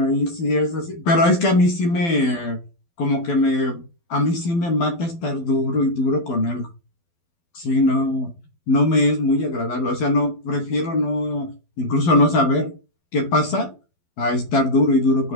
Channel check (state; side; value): late; right; 12 ms